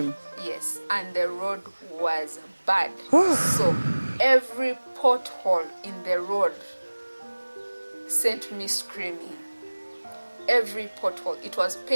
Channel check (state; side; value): inverted; both; correlation -1.00